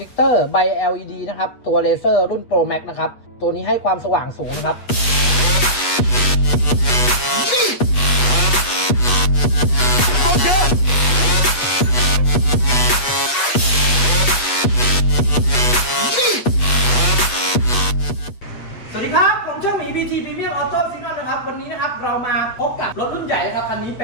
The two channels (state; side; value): late; right; 8.2 ms